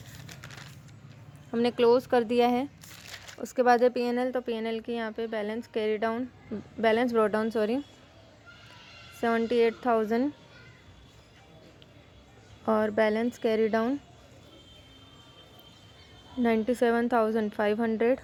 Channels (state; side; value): identical; both; correlation 1.00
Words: हमने क्लोज़ कर दिया है। उसके बाद है P&L, तो P&L की यहाँ पे बैलेंस ब्रॉट डाउन 78,000 और बैलेंस कैरी डाउन 97,500।